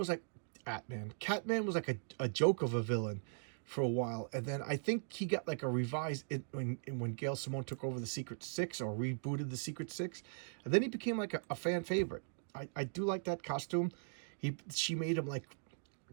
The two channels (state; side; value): silent; left; digital silence